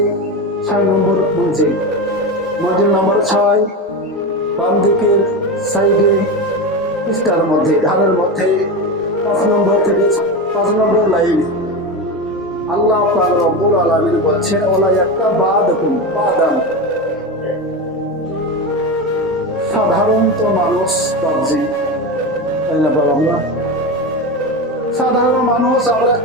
6 নম্বর মঞ্জিল, মঞ্জিল নম্বর 6 বাম দিকের সাইডে পৃষ্ঠার মধ্যে ধারের মধ্যে 5 নম্বর থেকে 5 নম্বর লাইনে আল্লাহ পাক রব্বুল আলামিন বলছেন ওলা ইয়াক্তাবাদকুম বাদান। সাধারণত মানুষ বাবজি, তাই না বাবা, আমরা সাধারণ মানুষ, আমরা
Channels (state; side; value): normal; both; correlation 0.20